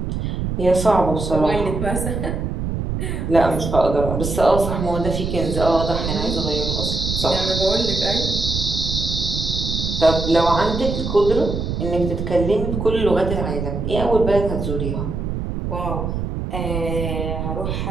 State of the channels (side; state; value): right; noise; rumble, 3 dB below the sound